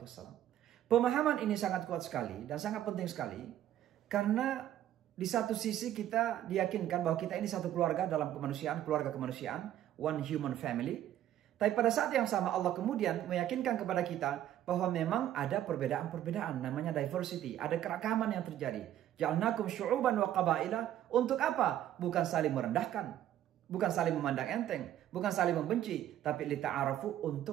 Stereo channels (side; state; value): left; quieter; 11.9 dB